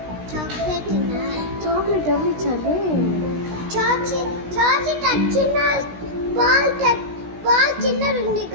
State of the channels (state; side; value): late; left; 16 ms